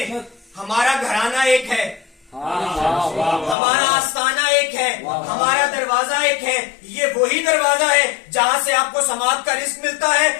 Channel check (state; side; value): drops out; right; at 3.6 s